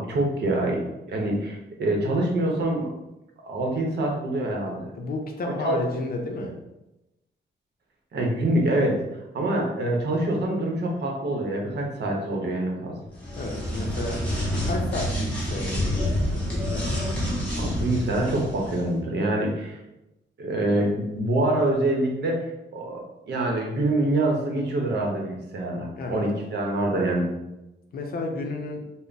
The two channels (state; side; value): normal; both; correlation 0.57